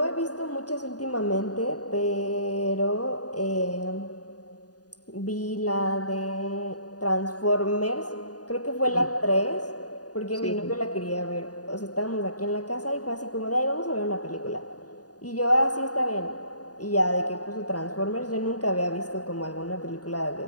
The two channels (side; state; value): right; late; 0.68 ms